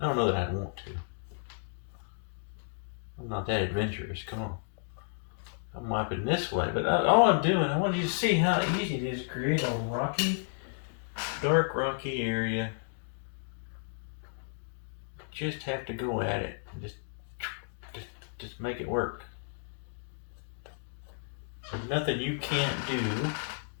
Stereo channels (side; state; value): right; silent; digital silence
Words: I don't know that I'd want to. I'm not that adventurous. Come on. I'm wiping this way, but all I'm doing, I want you to see how easy it is to create a rocky, dark rocky area. Just have to go at it and just make it work. There's nothing you can't do